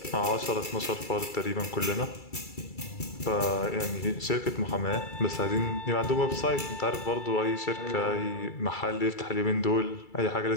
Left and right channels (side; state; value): right; late; 2.3 ms